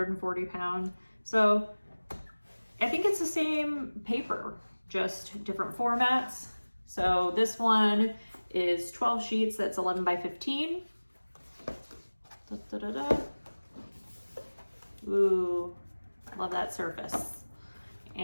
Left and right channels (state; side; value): inverted; both; correlation -1.00